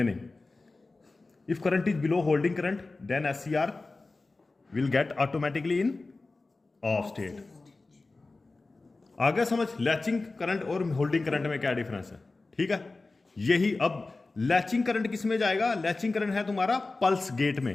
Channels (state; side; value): quieter; right; 3.5 dB